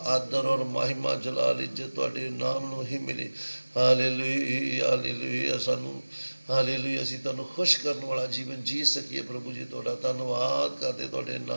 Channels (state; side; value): inverted; both; correlation -1.00